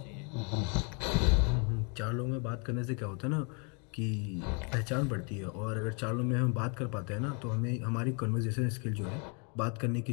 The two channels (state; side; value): quieter; right; 36.0 dB